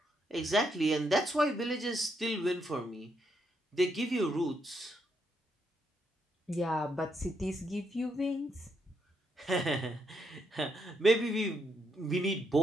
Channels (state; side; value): normal; both; correlation 0.78